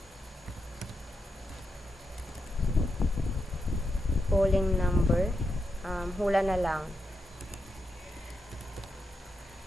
polling number, hula na lang,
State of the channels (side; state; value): both; normal; correlation 0.85